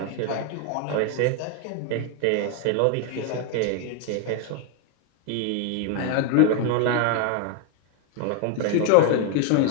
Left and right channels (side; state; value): both; different; correlation 0.01